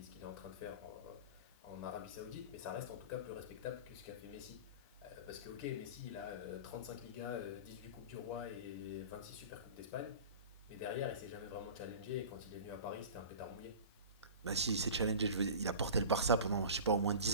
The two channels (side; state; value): both; inverted; correlation -0.36